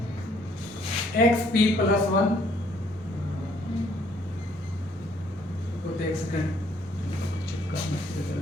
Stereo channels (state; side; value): normal; both; correlation 0.64